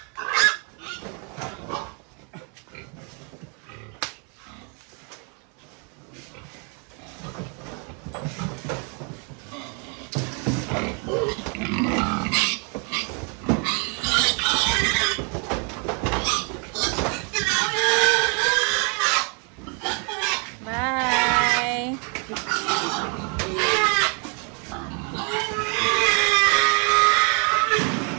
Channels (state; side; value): quieter; left; 36.5 dB